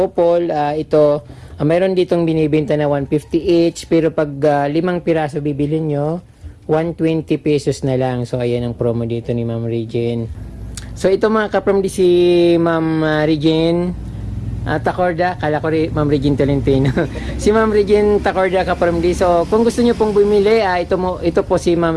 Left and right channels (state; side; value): identical; both; correlation 1.00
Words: Pole, ito, mayroon ditong binibenta na 150 each, pero pag 5 piraso bibilin nyo, 120 pesos na lang. So, ayan ang promo dito ni Ma'am Regine. So, ito mga kapromdi, si Ma'am Regine Tacorda, kala ko Ma'am Regine Tolentino. Si Ma'am Regine Tacorda kapromdi. So, kung gusto nyo pong bumili, ito po si Ma'am